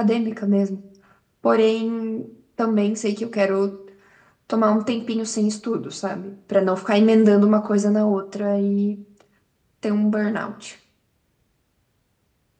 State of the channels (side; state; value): both; identical; correlation 1.00